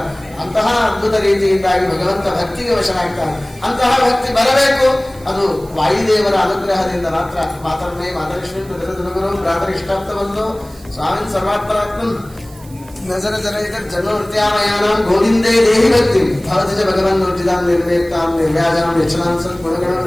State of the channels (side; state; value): right; noise; hiss, 24 dB below the sound